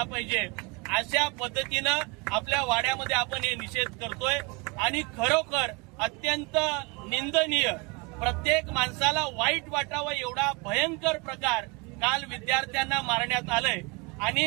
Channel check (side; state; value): left; quieter; 28.6 dB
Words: पाहिजे। अशा पद्धतीनं आपल्या वाड्यामध्ये आपण हे निषेध करतोय आणि खरोखर अत्यंत निंदनीय, प्रत्येक माणसाला वाईट वाटावं एवढा भयंकर प्रकार काल विद्यार्थ्यांना मारण्यात आलंय।